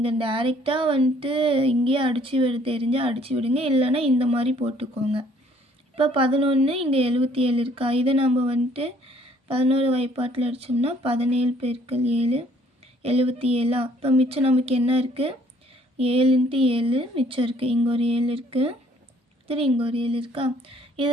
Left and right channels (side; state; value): both; normal; correlation 0.61